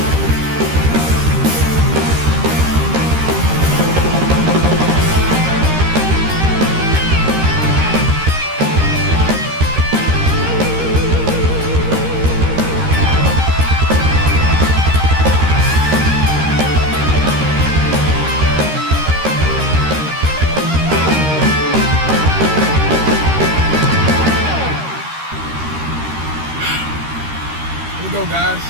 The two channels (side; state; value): left; late; 13 ms